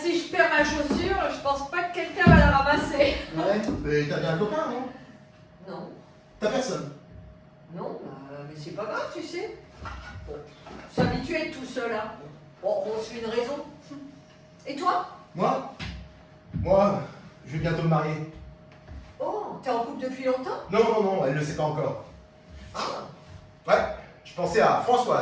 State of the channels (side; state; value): both; identical; correlation 1.00